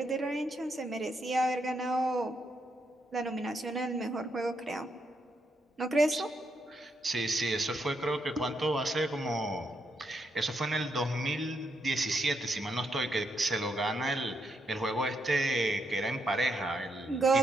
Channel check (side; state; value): both; normal; correlation 0.79